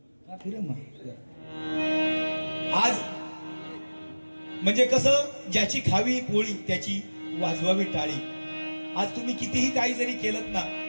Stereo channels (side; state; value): both; inverted; correlation -1.00